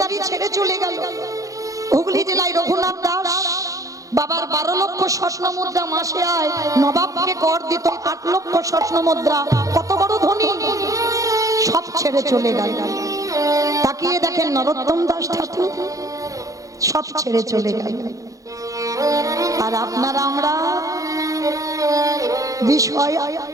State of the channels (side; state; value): left; late; 0.16 ms